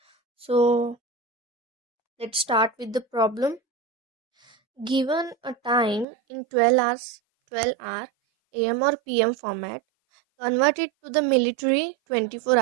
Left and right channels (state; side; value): drops out; left; at 6.1 s